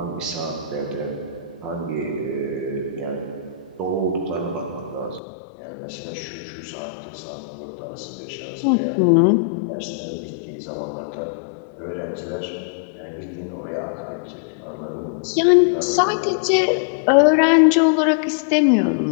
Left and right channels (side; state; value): right; drops out; at 5.2 s